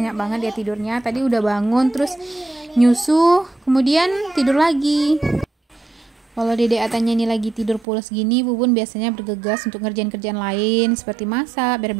banget dia tidurnya. Tadi udah bangun terus nyusu, kemudian tidur lagi. Kalau Dede Atanya ini lagi tidur pules gini, Bubun biasanya bergegas untuk ngerjain kerjaan lain seperti masak,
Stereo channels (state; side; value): drops out; left; at 7.9 s